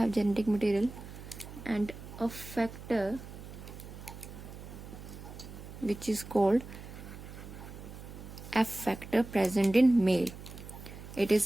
and a factor which is called F factor present in male. It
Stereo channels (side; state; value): right; noise; hum, 13 dB below the sound